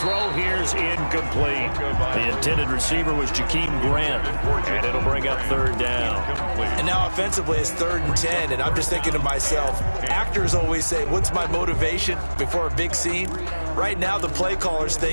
here's incomplete. The intended receiver was Jakeem Grant. And it'll bring up 3rd down. And now offensively it's 3rd and 10. And I'm just thinking to myself, actors always say, what's my motivation before a big scene? Right now the play caller's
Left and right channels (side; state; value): both; inverted; correlation -1.00